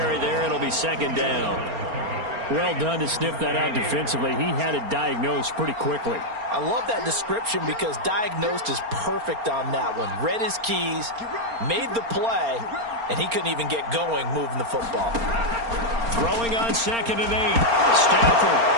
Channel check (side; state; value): left; late; 4.3 ms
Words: there. It'll be second down. Well done to sniff that out defensively. He had it diagnosed pretty quickly. I love that description because diagnosed is perfect on that one. Read his keys, made the play, and he couldn't even get going moving the football. Throwing on 2nd and 8. Stafford.